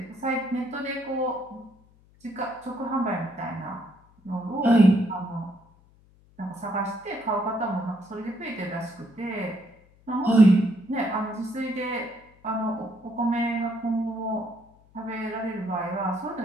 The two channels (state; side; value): noise; left; hum, 29 dB below the sound